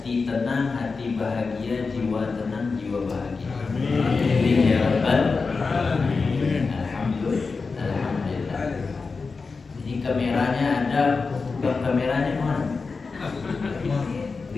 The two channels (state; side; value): quieter; right; 4.5 dB